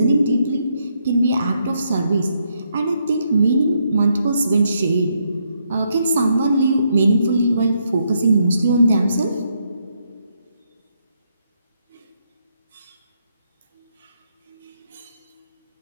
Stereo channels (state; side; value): inverted; both; correlation -0.77